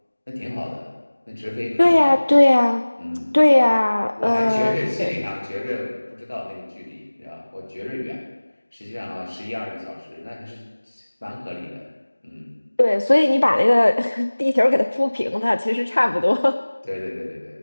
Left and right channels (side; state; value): both; inverted; correlation -1.00